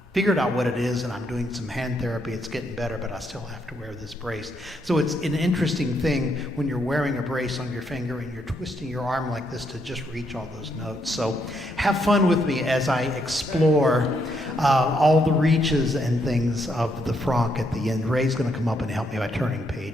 figured out what it is, and I'm doing some hand therapy. It's getting better, but I still have to wear this brace. So it's an interesting thing when you're wearing a brace on your finger and you're twisting your arm like this to just reach all those notes. So have fun with me as I explore all the reaches and things of the franc at the end. Ray's going to come up and help me by turning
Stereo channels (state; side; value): normal; both; correlation 0.76